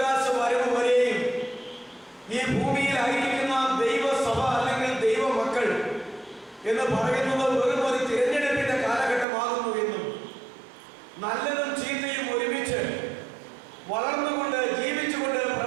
വരവ് വരെയും ഈ ഭൂമിയിലായിരിക്കുന്ന ദൈവസഭ അല്ലെങ്കിൽ ദൈവമക്കൾ എന്ന് പറയുന്നത് വെറും ഒരു തിരഞ്ഞെടുപ്പിന്റെ കാലഘട്ടമാകുന്നു എന്നും നല്ലതും ചീത്തയും ഒരുമിച്ച് വളർന്നുകൊണ്ട് ജീവിച്ചുകൊണ്ട്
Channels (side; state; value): left; drops out; at 9.2 s